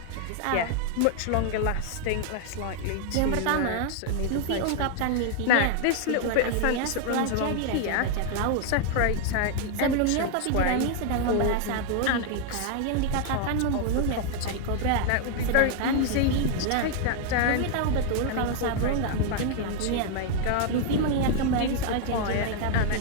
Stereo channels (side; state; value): both; different; correlation 0.00